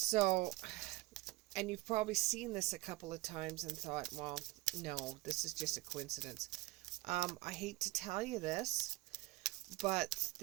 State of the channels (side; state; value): left; quieter; 20.4 dB